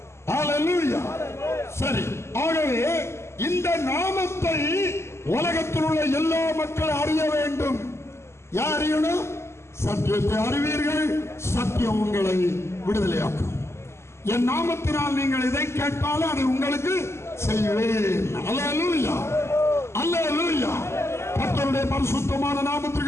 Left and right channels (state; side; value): late; right; 0.13 ms